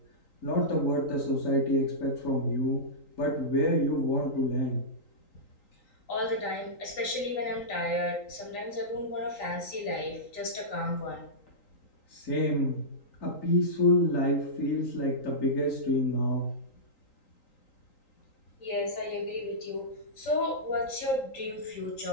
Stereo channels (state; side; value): late; right; 3.8 ms